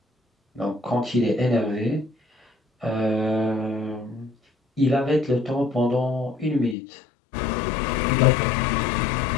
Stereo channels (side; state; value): right; drops out; at 6.8 s